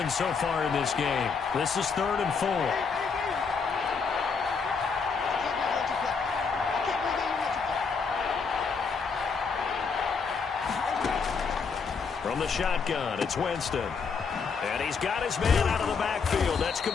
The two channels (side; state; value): right; quieter; 5.4 dB